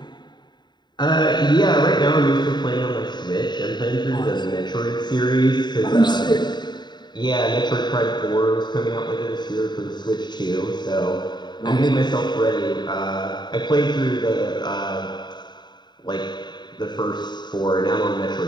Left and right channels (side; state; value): right; late; 0.21 ms